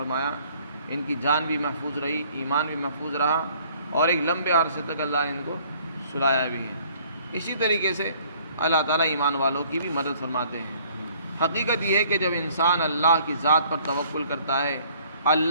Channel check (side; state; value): both; inverted; correlation -0.58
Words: ان کی جان بھی محفوظ رہی، ایمان بھی محفوظ رہا، اور ایک لمبے عرصے تک اللہ نے ان کو سلایا بھی ہے۔ اسی طریقے سے اللہ تعالیٰ ایمان والوں کی بھی مدد فرماتے ہیں۔ حقیقت یہ ہے کہ جب انسان اللہ کی ذات پر توکل کرتا ہے،